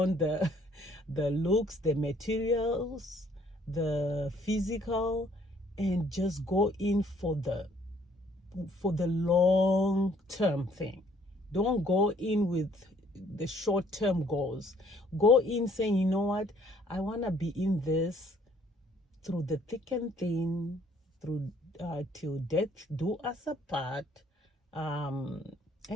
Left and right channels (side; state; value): both; normal; correlation 0.62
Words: the the looks, the materials, the physical, and just go in for the long term thing. Don't go in with the short term goals. Go in saying, you know what, I want to be in this through the thick and thin, through till death do us apart, and